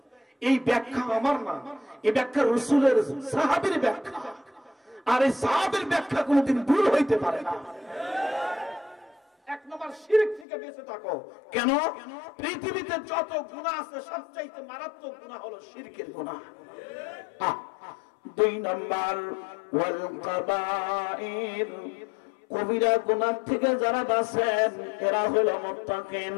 এই ব্যাখ্যা আমার না, এই ব্যাখ্যা রাসূলের সাহাবীর ব্যাখ্যা, আর এই সাহাবীর ব্যাখ্যা কোনোদিন ভুল হইতে পারে না। 1 নম্বর, শিরক থেকে বেঁচে থাকো। কেন? পৃথিবীতে যত গুনাহ আছে সবচাইতে মারাত্মক গুনাহ হলো শিরকের গুনাহ। 2 নম্বর, ওয়াল কাবাইর, কবিরা গুনাহ থেকে যারা বাঁচেন এরা হলো মুত্তাকিন।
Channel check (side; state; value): right; drops out; at 10.5 s